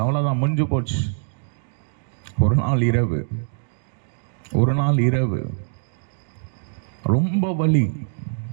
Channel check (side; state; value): left; silent; digital silence